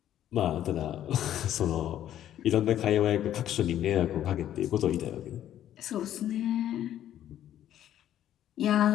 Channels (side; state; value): right; quieter; 11.5 dB